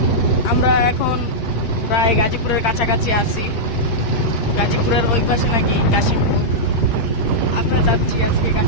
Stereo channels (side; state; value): right; late; 8.7 ms